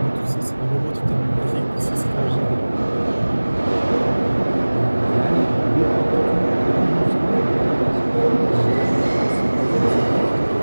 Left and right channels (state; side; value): inverted; both; correlation -1.00